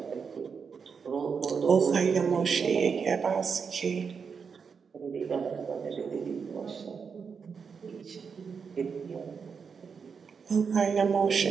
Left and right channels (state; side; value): quieter; left; 5.9 dB